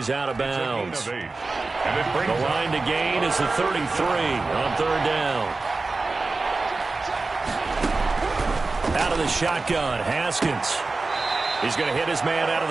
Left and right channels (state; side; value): quieter; left; 3.6 dB